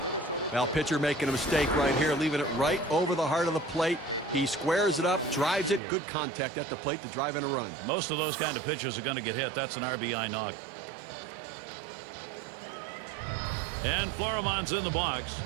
Well, pitcher making a mistake right here, leaving it right over the heart of the plate. He squares it up, drives it. Good contact at the plate to drive in a run. Most of those kind of pitchers are going to get hit. That's an RBI knock. And Floremon's in the box.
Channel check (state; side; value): drops out; left; at 5.8 s